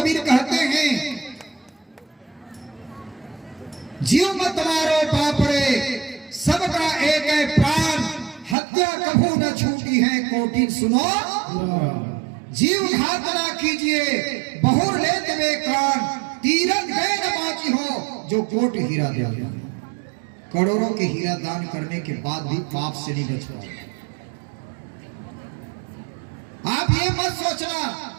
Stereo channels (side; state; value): left; drops out; at 8.6 s